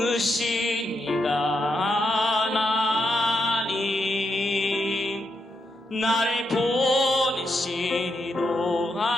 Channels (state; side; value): normal; both; correlation 0.82